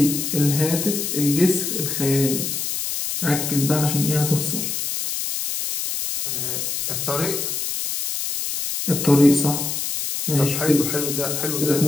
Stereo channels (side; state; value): left; noise; hiss, 3 dB below the sound